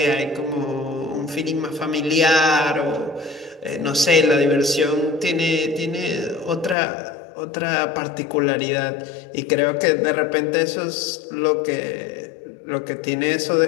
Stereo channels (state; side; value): drops out; right; at 6.8 s